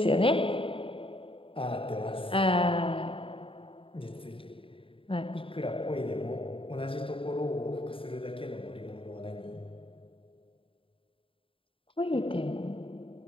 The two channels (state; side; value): late; right; 0.26 ms